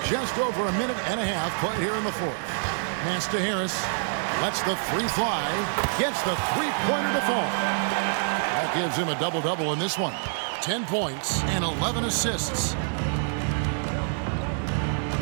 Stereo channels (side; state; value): left; silent; 61 dB below the other